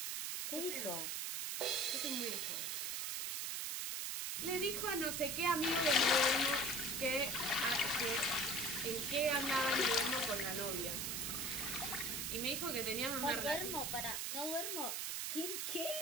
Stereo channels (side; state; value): right; noise; hiss, 1 dB below the sound